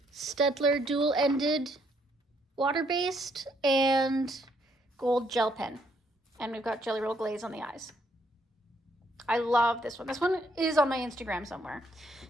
Staedtler dual-ended water-based, and gold gel pen. And we've got Jelly Roll glaze on the eyes. I love this one. This one is on my Instagram somewhere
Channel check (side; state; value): both; normal; correlation 0.71